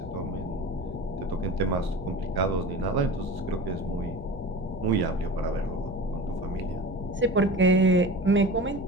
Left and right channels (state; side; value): normal; both; correlation 0.34